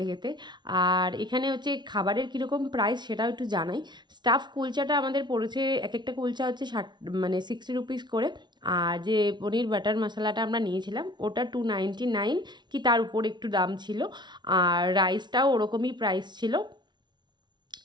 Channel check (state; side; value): late; left; 0.21 ms